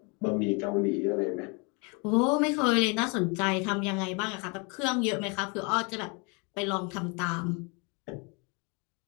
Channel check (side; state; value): right; quieter; 32.3 dB